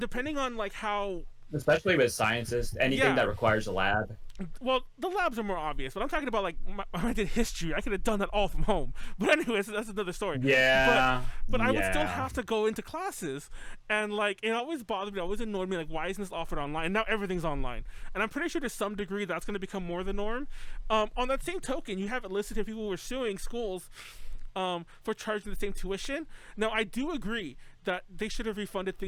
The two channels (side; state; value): both; identical; correlation 1.00